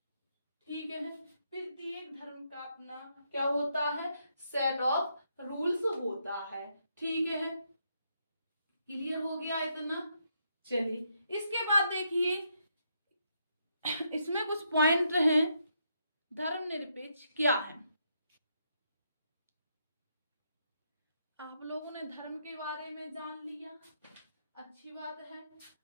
ठीक है। प्रत्येक धर्म का अपना क्या होता है, सेट ऑफ रूल्स होता है। ठीक है, क्लियर हो गया इतना। चलिए इसके बाद देखिए, इसमें कुछ पॉइंट हैं। धर्मनिरपेक्ष क्या है? आप लोगों ने धर्म के बारे में जान लिया, अच्छी बात है।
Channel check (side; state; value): both; inverted; correlation -0.77